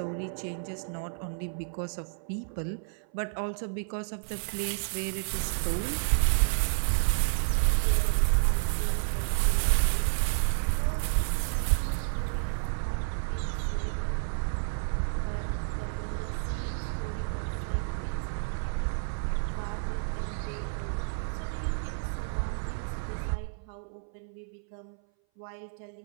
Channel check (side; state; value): left; silent; 58 dB below the other